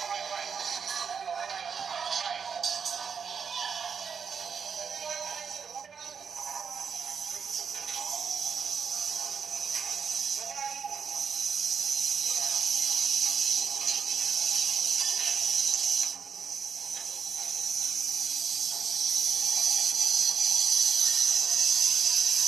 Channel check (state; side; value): quieter; left; 6.6 dB